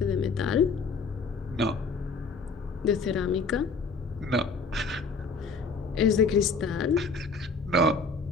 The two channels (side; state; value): right; quieter; 4.0 dB